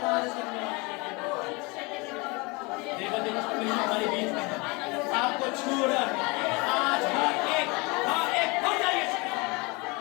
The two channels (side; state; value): right; quieter; 27.0 dB